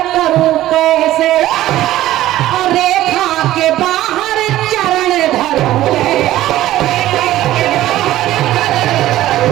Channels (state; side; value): quieter; left; 14.6 dB